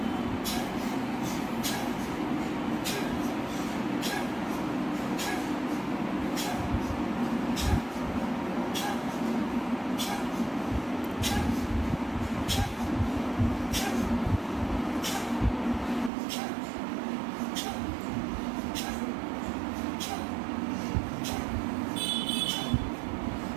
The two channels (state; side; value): drops out; left; at 16.1 s